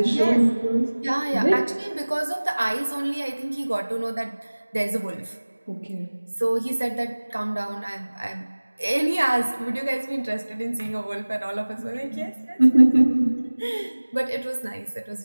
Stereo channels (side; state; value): both; inverted; correlation -1.00